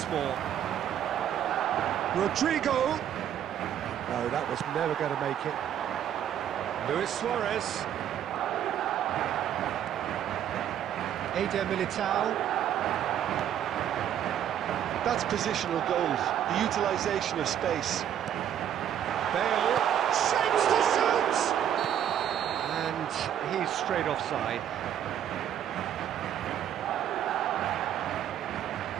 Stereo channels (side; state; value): left; quieter; 10.1 dB